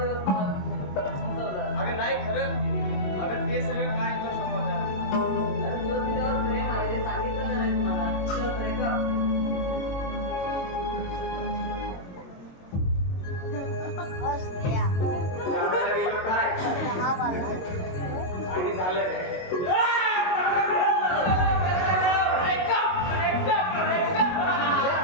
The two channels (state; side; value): late; right; 22 ms